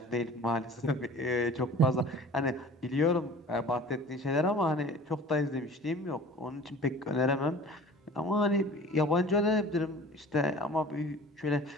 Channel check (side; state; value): both; normal; correlation 0.44